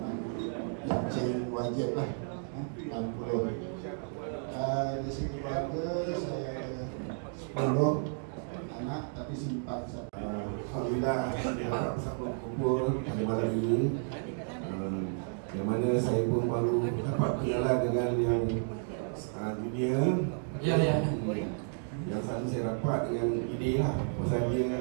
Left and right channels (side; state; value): left; silent; 56 dB below the other